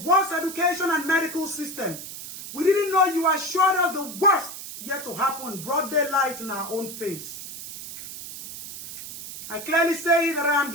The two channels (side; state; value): right; noise; hiss, 11 dB below the sound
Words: education and medical system. We didn't know you assured us the worst yet to happen, broad daylight in our own face. I clearly say that I am